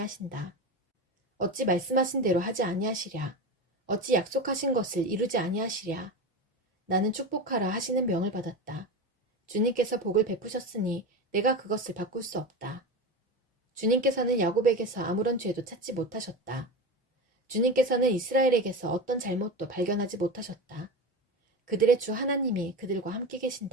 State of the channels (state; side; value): normal; both; correlation 0.24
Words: 어찌 말씀하신 대로 하지 아니하시랴. 어찌 약속하신 것을 이루지 아니하시랴. 나는 축복하라 하시는 명을 받았다. 주님께서 복을 베푸셨으니 내가 그것을 바꿀 수 없다. 주님께서는 야곱에게서 아무런 죄도 찾지 못하셨다. 주님께서는 이스라엘에게서 어떤 잘못도 발견하지 못하셨다. 그들의 주 하나님이 그들과 함께